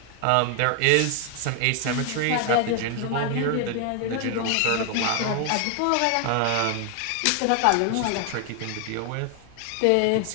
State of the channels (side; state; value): both; different; correlation 0.00